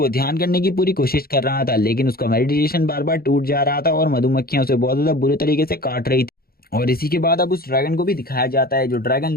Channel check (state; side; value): late; right; 0.44 ms